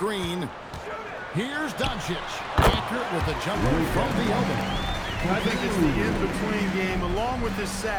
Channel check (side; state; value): both; identical; correlation 1.00